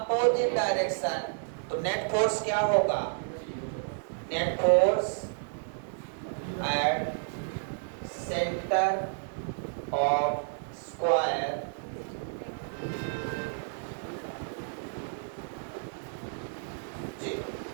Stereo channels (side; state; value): left; silent; digital silence